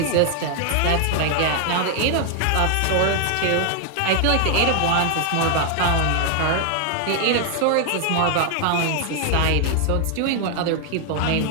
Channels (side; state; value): both; different; correlation 0.00